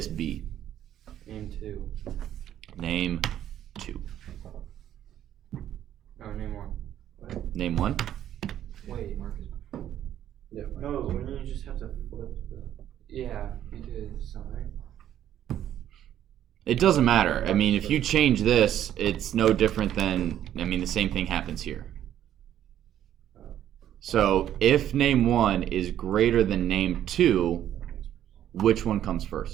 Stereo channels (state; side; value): quieter; left; 11.2 dB